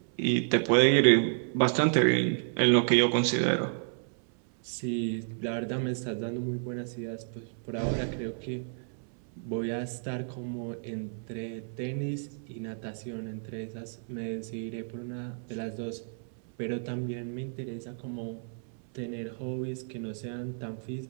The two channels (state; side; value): silent; left; 57 dB below the other